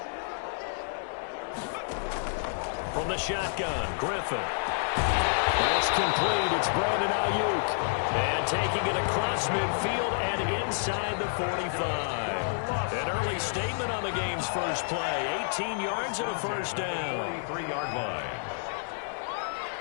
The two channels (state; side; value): silent; right; digital silence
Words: the shotgun, Griffin. That's complete. It's Brandon Ayuk. And taking it across midfield and inside the 45. An early statement on the game's first play. 18 yards and a first down. 3-yard line.